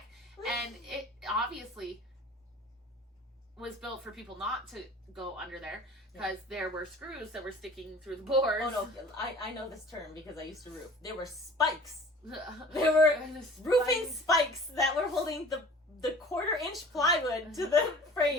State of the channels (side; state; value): both; normal; correlation 0.46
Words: and it obviously was built for people not to go under there because there were screws that were sticking through the boards. Oh no, I know this term because I used to roof. There were spikes. There were roofing spikes that were holding the 1/4-inch plywood to the frame.